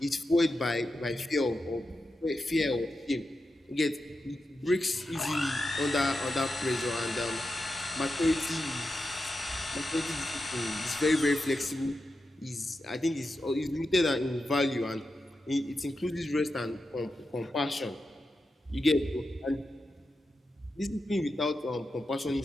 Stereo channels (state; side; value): normal; both; correlation 0.89